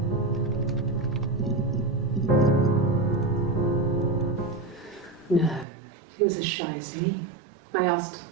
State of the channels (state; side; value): drops out; left; at 5.7 s